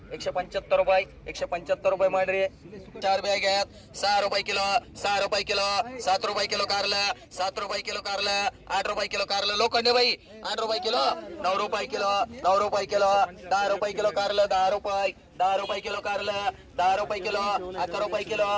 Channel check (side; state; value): both; identical; correlation 1.00